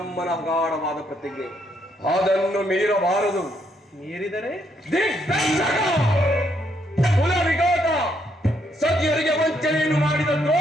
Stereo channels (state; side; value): normal; both; correlation 0.74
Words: ಗಾಢವಾದ ಪ್ರತಿಜ್ಞೆ. ಅದನ್ನು ಮೀರಬಾರದು. ಮೀರಿದರೆ ಕುಲ ವಿಘಾತ, ಸತಿಯರಿಗೆ ವಂಚನೆಯನ್ನು ಮಾಡಿದ